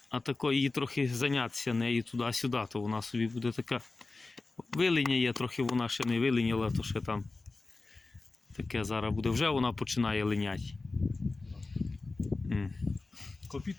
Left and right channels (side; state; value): right; quieter; 3.5 dB